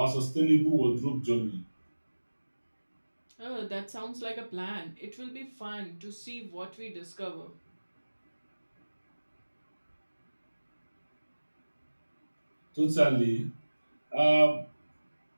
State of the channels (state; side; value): inverted; both; correlation -1.00